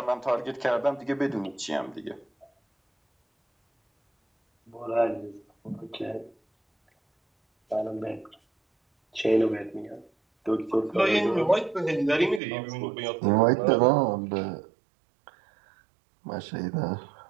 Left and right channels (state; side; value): drops out; left; at 12.4 s